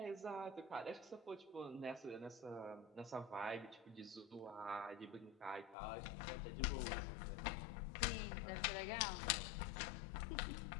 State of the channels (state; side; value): drops out; right; at 5.8 s